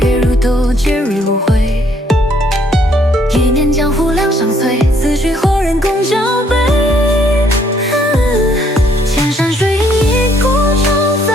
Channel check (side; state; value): both; normal; correlation 0.66